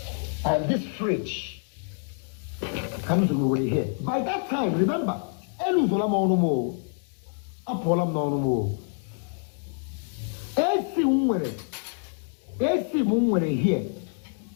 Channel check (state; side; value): silent; right; 59 dB below the other